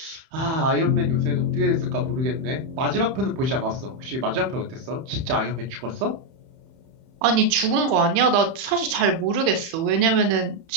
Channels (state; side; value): late; left; 30 ms